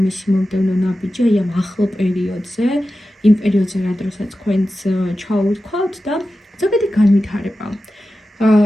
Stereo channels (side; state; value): both; normal; correlation 0.93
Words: მისი მომდევნო ნაბიჯი აი ამ ახლო პერიოდზე, იმ პერიოდზე, რა დროსაც თქვენს ჩაუვთქვათ და ზოგადი განვითარება.